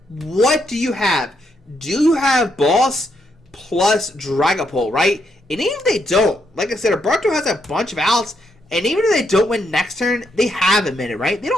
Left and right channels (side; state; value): both; normal; correlation 0.78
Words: what do you have? Do you have Boss plus Dragapult, right? And even if they don't, like I said, Alberto has a bunch of outs, and even if they don't win next turn, they have a minute, right? They